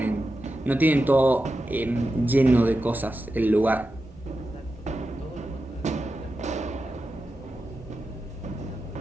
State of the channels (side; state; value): both; normal; correlation 0.91